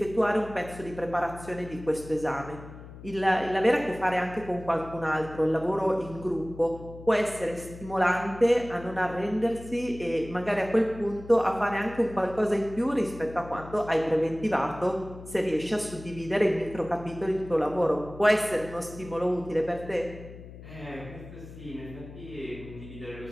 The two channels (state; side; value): noise; left; hum, 15 dB below the sound